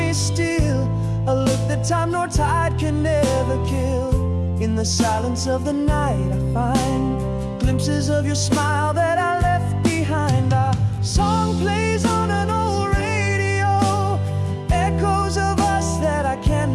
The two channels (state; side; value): identical; both; correlation 1.00